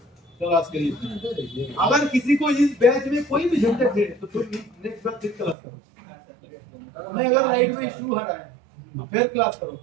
चलो आज के लिए अगर किसी को इस बैच में कोई भी झंझट है तो तुम नेक्स्ट बार फिर क्लास करो। मैं अगर लाइट में इशू आ रहा है तो फिर क्लास करो,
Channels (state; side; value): drops out; left; at 5.6 s